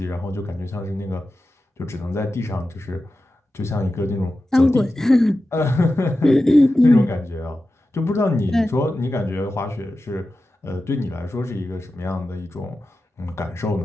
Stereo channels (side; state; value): both; normal; correlation 0.92